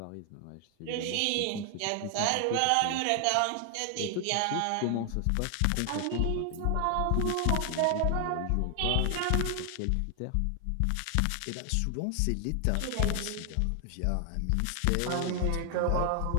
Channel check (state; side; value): different; both; correlation 0.00